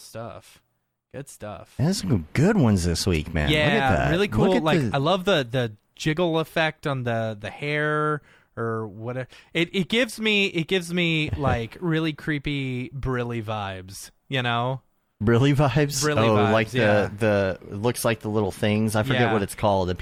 Good stuff. There's some good ones this week, man. Yeah, look at that. Really cool. I love the jiggle effect on the hair. Or whatever. It gives me like really creepy Brilly vibes, Brilly vibes? Brilly vibes, like the it looks like the little things. I forget what it's called that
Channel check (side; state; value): both; identical; correlation 1.00